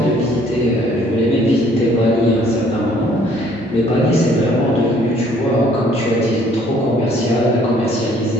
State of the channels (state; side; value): normal; both; correlation 0.60